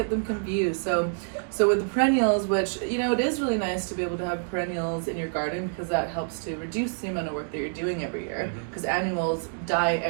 them confused. So with the perennials, which it is really nice to be able to have perennials in your garden because that helps to reduce the amount of work that you're doing every year. Because annuals die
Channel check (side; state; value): left; silent; digital silence